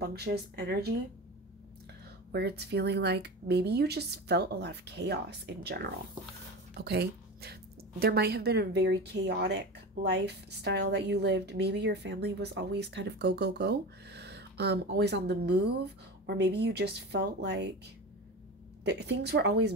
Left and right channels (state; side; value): normal; both; correlation 0.28